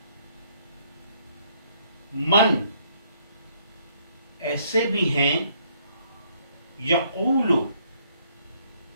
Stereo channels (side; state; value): both; inverted; correlation -0.67